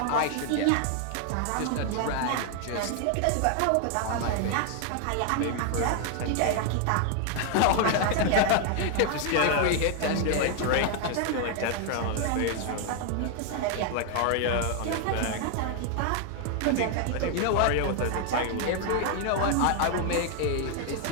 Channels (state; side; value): different; both; correlation 0.00